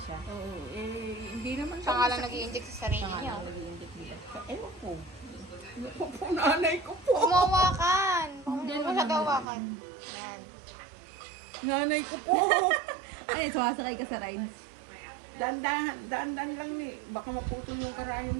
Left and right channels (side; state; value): left; drops out; at 9.5 s